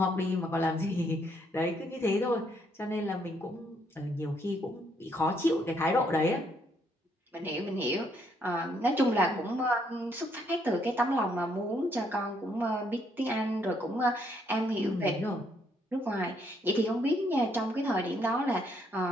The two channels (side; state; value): both; normal; correlation 0.71